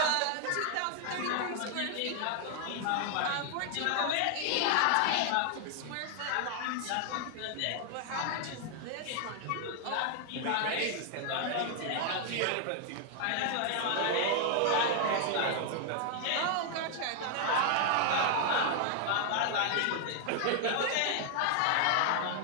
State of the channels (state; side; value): different; both; correlation 0.00